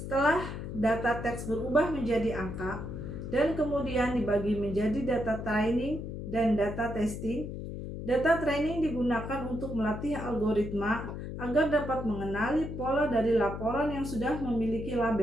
data teks berubah menjadi angka dan kemudian dibagi menjadi data training dan data testing, data training digunakan untuk melatih algoritma agar dapat mengenali pola dari laporan yang sudah memiliki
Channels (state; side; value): noise; left; hum, 7 dB below the sound